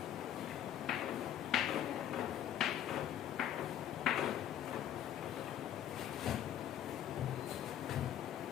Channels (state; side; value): quieter; right; 10.7 dB